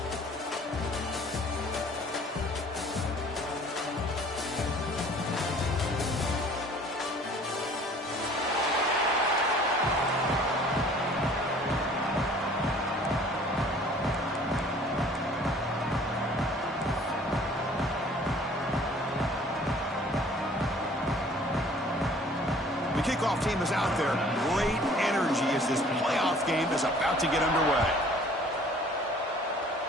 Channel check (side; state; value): both; normal; correlation 0.52